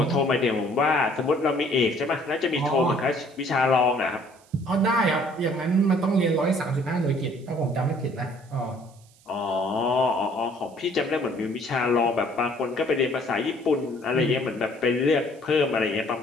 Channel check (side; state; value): right; noise; hiss, 29 dB below the sound